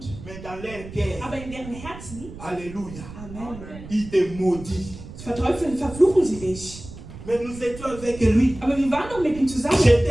mais dans leur cœur, aber in deren Herzen, alléluia, Amen, ils te maudissent. verteufeln, verfluchen sie dich. Mais nous étions avec lui. Aber wir waren doch mit ihm zusammen.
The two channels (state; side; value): noise; right; rumble, 14 dB below the sound